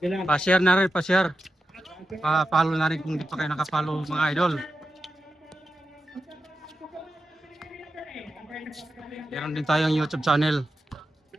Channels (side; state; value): both; normal; correlation 0.90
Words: Pa-share na rin, pa-share. Pa-follow na rin kung di pa kayo nakapollow, mga idol. Meron din tayong YouTube channel.